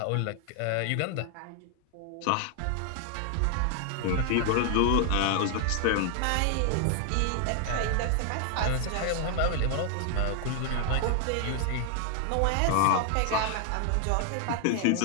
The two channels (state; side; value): different; both; correlation 0.00